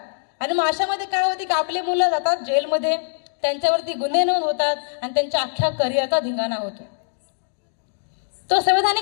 आणि मग अशामध्ये काय होते की आपले मुलं जातात जेलमध्ये, त्यांच्यावरती गुन्हे नोंद होतात आणि त्यांच्या अख्ख्या करिअरचा धिंगाणा होतो. तो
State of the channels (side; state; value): right; silent; digital silence